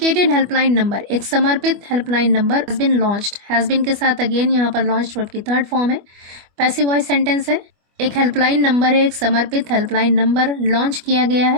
helpline number, एक समर्पित helpline number has been launched. has been के साथ अगेन यहाँ पर launched वर्ब की थर्ड फॉर्म है, पैसिव वॉइस सेंटेंस है. एक हेल्पलाइन नंबर है, एक समर्पित हेल्पलाइन नंबर लॉन्च किया गया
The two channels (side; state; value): left; late; 25 ms